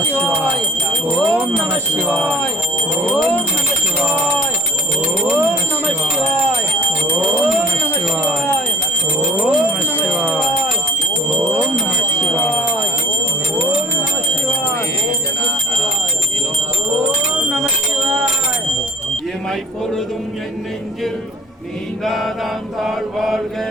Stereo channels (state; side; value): normal; both; correlation 0.48